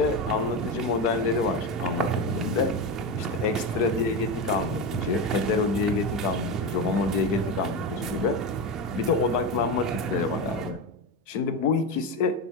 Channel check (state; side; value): normal; both; correlation 0.17